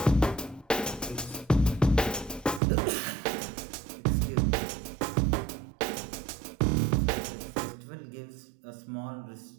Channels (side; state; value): left; drops out; at 2.6 s